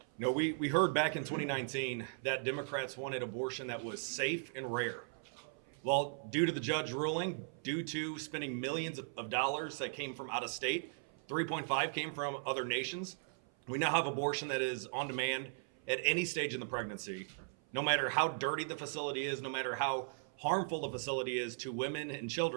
No, we heard back in 2019 that Democrats wanted abortion that was safe and rare. Well, due to the judge ruling, due to spending millions of dollars that came from out of state, 3.5 came from other nations, we now have abortion that is on demand at any stage in the pregnancy. No matter how dirty the facility is, no matter how harmful the facility is to women and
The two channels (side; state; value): left; silent; 53 dB below the other